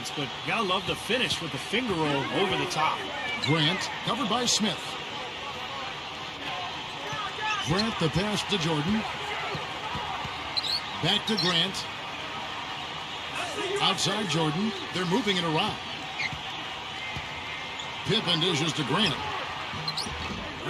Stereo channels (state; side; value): identical; both; correlation 1.00